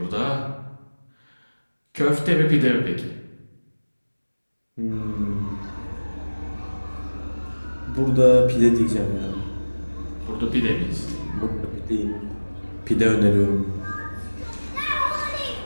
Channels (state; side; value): inverted; both; correlation -1.00